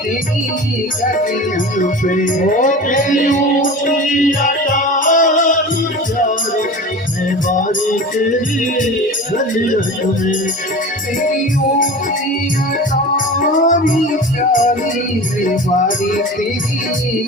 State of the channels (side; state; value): both; normal; correlation 0.34